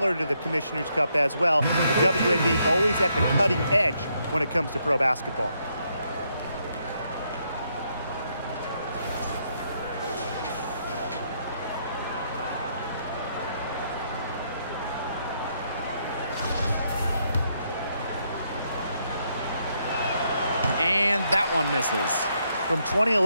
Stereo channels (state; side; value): inverted; both; correlation -0.75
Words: to the Commissioner's Cup as well. The WNBA always at the cutting edge when it comes to pro basketball. And that one misses. From